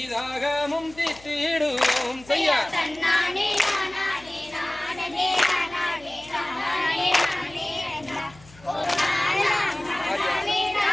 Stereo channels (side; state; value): left; noise; hum, 24 dB below the sound